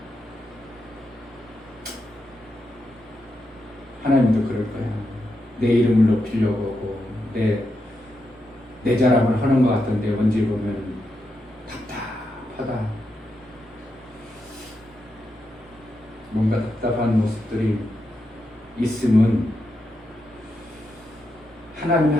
하나님도 그럴 거야. 내 이름을 높이려고 하고 내 자랑을 하는 것 같은데 언제 보면 답답하다. 뭔가 답답한 모습들이 있으면 하나님이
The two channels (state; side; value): normal; both; correlation 0.85